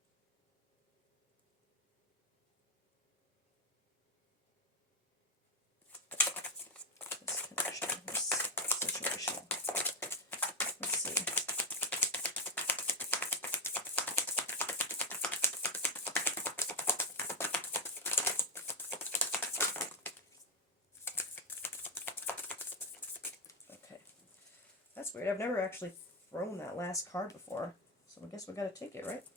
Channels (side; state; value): both; normal; correlation 0.07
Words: this connection, this situation. Let's see. Okay. That's weird. I've never actually thrown that last card before. So I guess we gotta take it, right?